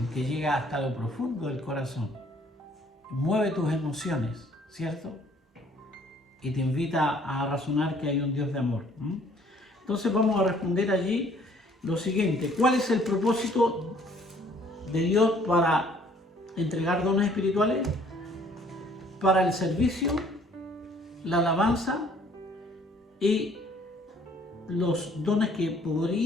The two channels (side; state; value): both; normal; correlation 0.59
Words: que llega hasta lo profundo del corazón. Mueve tus emociones, ¿cierto? Y te invita a razonar que hay un Dios de amor. Entonces vamos a responder allí lo siguiente. ¿Cuál es el propósito de Dios para entregar dones espirituales? Para el servicio, la alabanza y los dones que